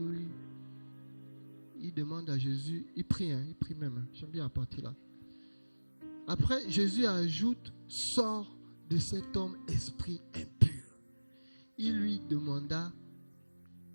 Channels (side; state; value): both; inverted; correlation -1.00